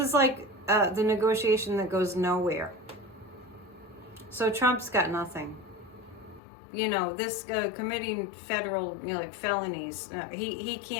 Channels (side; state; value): right; drops out; at 6.4 s